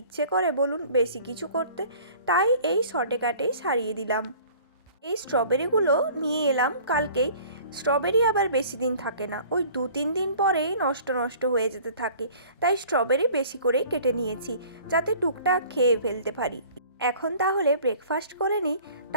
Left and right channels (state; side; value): inverted; both; correlation -0.48